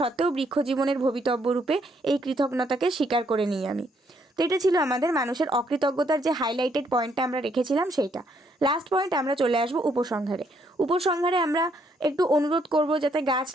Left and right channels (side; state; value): both; normal; correlation 0.71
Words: বৃক্ষ জীবনের ভবিতব্য রূপে এই কৃতজ্ঞতাকে স্বীকার করে নিই আমি। তো এটা ছিল আমাদের মানুষের অকৃতজ্ঞতার যে হাইলাইটেড পয়েন্টটা আমরা রেখেছিলাম সেইটা। লাস্ট পয়েন্ট আমরা চলে আসবো উপসংহারে। উপসংহারে আমরা একটু অনুরোধ করব যাতে গাছ